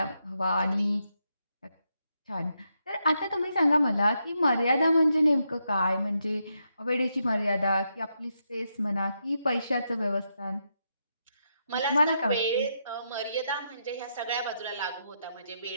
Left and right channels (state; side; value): inverted; both; correlation -0.82